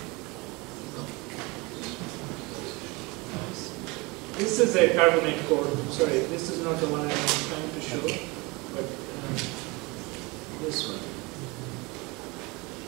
This is a carbonate core. Sorry, this is not the one I'm trying to show, but this one.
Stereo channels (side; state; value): left; quieter; 25.6 dB